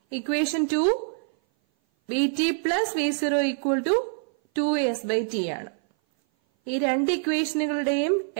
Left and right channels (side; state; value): left; silent; 57 dB below the other